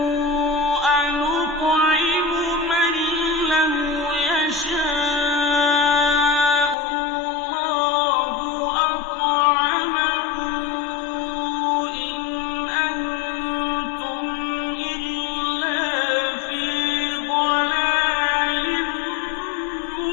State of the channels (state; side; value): drops out; right; at 6.8 s